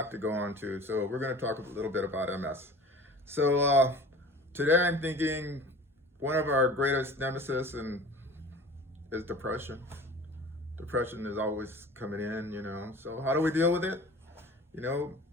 to go on too. So we're going to talk a little bit about MS. So today I'm thinking one of our greatest nemesis is depression. Depression is always coming in. So how do we deal with it? You know,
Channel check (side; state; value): both; normal; correlation 0.41